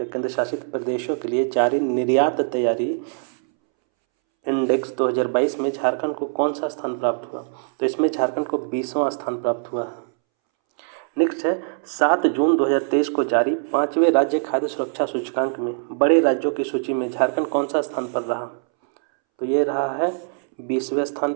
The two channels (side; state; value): left; silent; 64 dB below the other